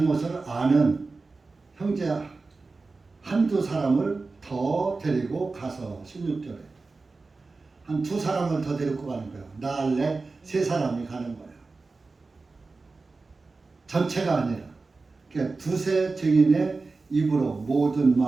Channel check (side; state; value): left; quieter; 3.8 dB